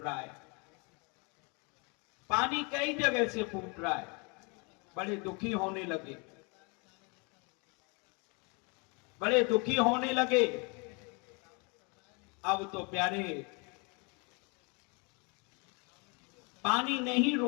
है, पानी कई जगह से फूट रहा है। बड़े दुखी होने लगे, बड़े दुखी होने लगे। अब तो प्यारे पानी नहीं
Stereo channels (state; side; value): quieter; right; 31.9 dB